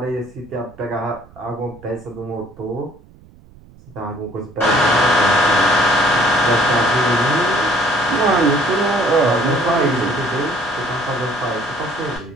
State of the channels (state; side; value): noise; right; rumble, 24 dB below the sound